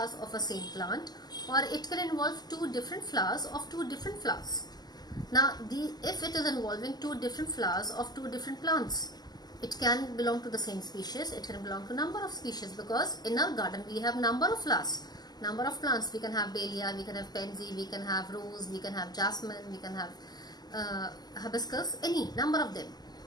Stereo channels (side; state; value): right; late; 0.20 ms